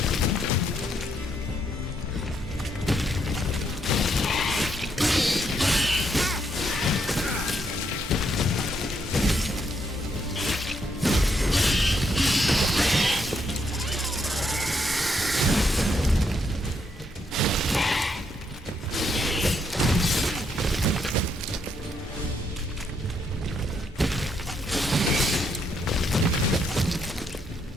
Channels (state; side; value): normal; both; correlation 0.75